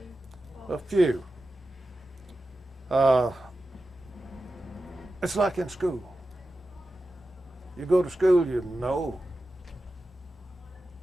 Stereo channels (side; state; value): both; normal; correlation 0.93